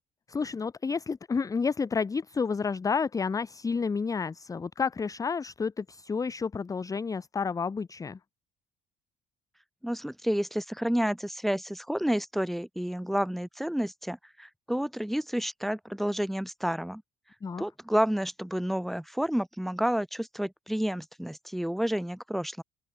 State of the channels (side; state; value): both; normal; correlation 0.90